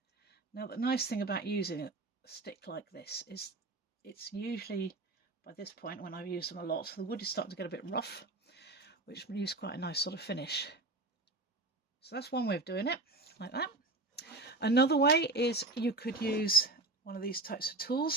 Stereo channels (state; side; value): quieter; left; 3.0 dB